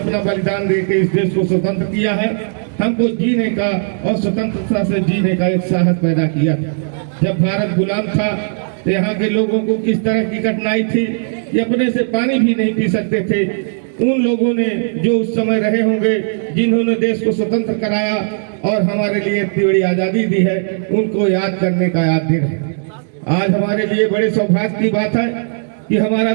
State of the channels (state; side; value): silent; left; digital silence